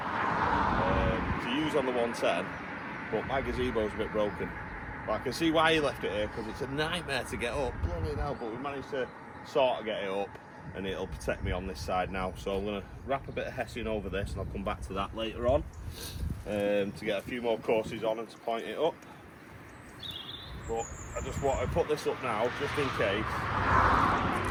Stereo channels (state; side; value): identical; both; correlation 1.00